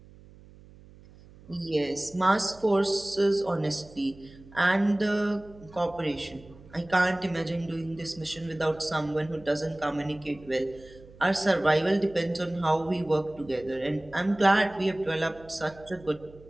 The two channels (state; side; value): noise; right; hum, 22 dB below the sound